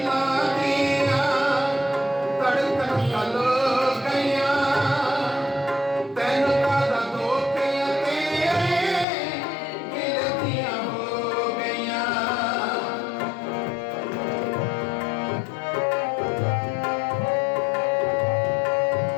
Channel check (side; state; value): right; drops out; at 9.1 s